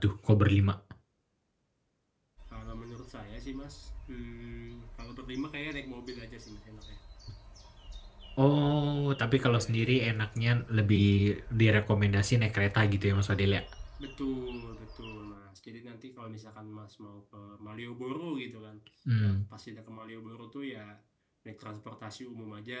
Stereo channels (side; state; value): both; identical; correlation 1.00